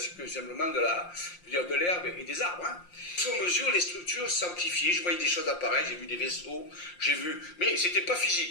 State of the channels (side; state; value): right; late; 5.7 ms